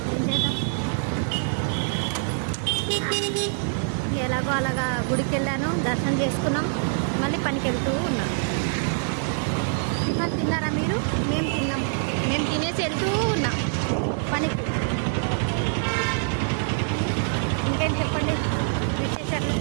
ఏం చేద్దాం, ఎలాగో అలాగా గుడికి వెళ్ళాను, దర్శనం చేసుకున్నాం, మళ్ళీ పనికి వెళ్తూ ఉన్నాం. టిఫిన్ తిన్నారా మీరు? మేము తిన్నాం, మేము తినేసి వెళ్తూ ఉన్నాం పనికి. ఇంకేం చెప్పండి విశేషాలు.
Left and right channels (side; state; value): left; silent; 62 dB below the other